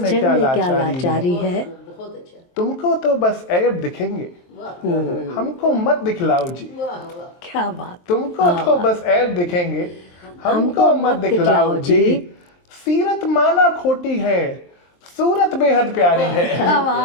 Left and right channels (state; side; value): late; right; 23 ms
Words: क्या लाचारी है। तुमको तो बस ऐब दिखेंगे, हमको मत दिखलाओ जी, क्या बात। तुमको तो बस ऐब दिखेंगे, हमको मत दिखलाओ जी। सीरत माना खोटी है, सूरत बेहद प्यारी है। वाह